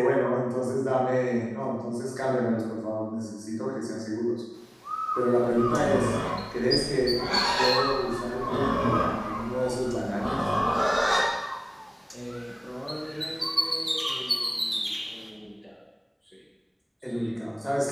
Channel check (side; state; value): both; identical; correlation 1.00